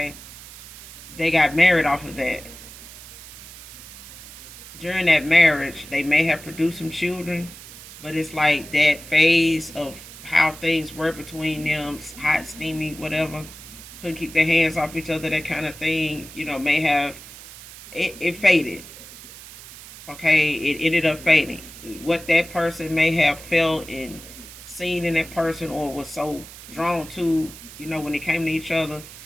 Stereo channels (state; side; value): noise; right; hiss, 16 dB below the sound